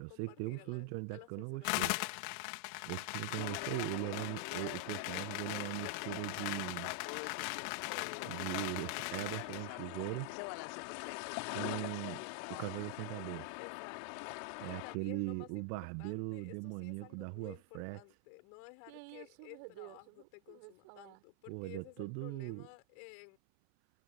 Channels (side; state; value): both; different; correlation 0.00